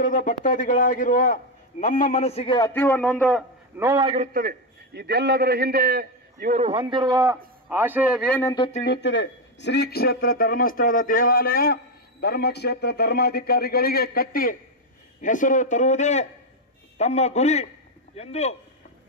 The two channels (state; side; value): normal; both; correlation 0.06